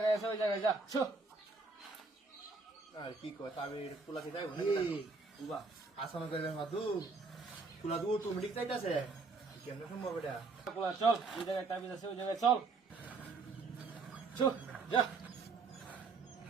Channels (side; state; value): left; quieter; 4.1 dB